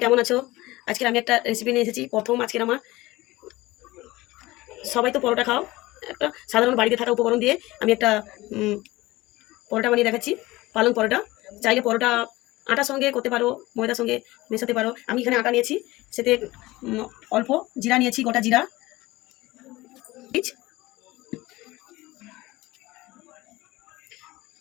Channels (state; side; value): quieter; right; 19.3 dB